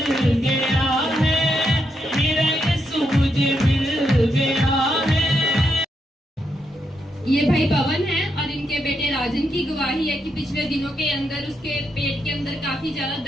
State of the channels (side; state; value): both; normal; correlation 0.81